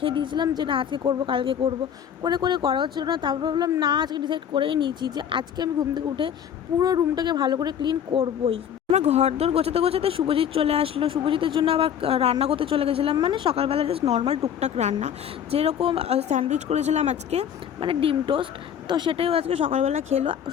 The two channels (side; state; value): right; quieter; 8.9 dB